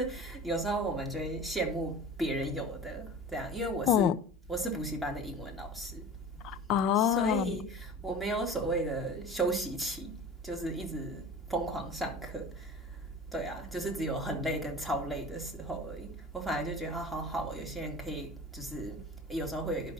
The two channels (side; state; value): both; normal; correlation 0.37